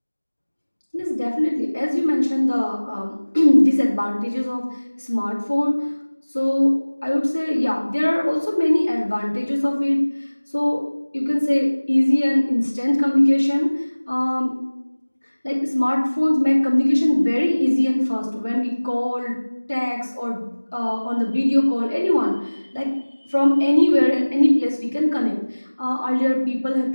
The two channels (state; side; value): inverted; both; correlation -1.00